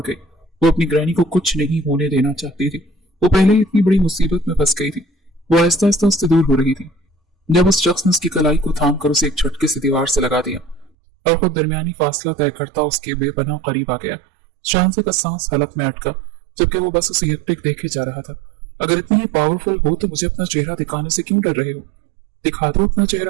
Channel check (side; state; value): left; drops out; at 10.9 s